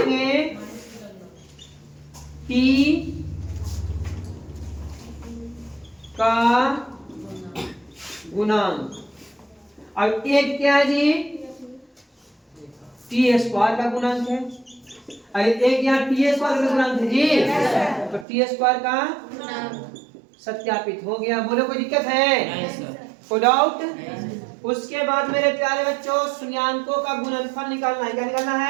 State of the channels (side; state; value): left; drops out; at 18.2 s